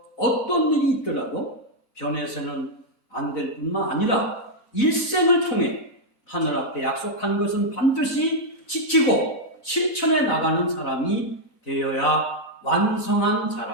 어떤 일이 있더라도 변해서는 안 될 뿐만 아니라 일생을 통해 하늘 앞에 약속한 것은 반드시 지키고 실천해 나가는 사람이 되어야 완성한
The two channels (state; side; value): normal; both; correlation -0.02